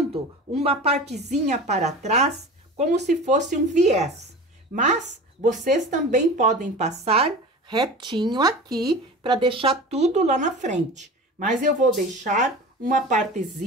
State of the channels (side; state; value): both; normal; correlation 0.35